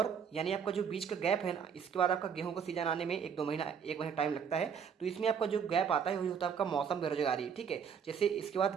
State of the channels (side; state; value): left; quieter; 7.1 dB